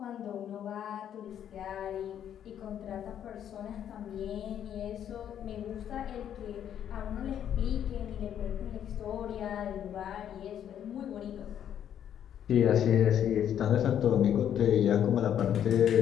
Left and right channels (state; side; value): quieter; right; 9.8 dB